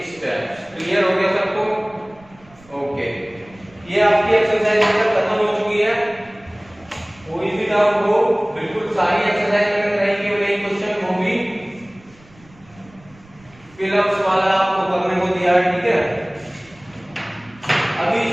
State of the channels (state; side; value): noise; right; rumble, 26 dB below the sound